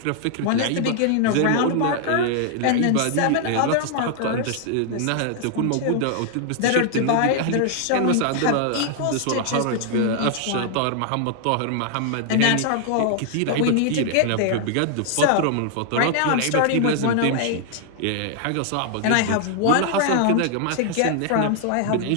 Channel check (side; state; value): both; different; correlation 0.00